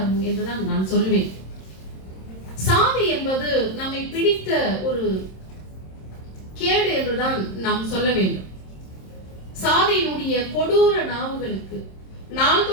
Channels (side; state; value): right; late; 26 ms